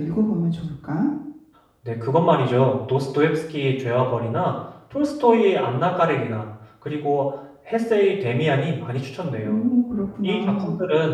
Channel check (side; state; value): both; identical; correlation 1.00